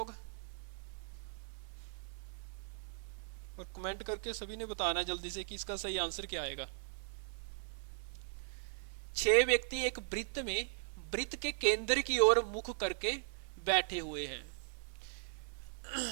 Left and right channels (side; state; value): left; silent; digital silence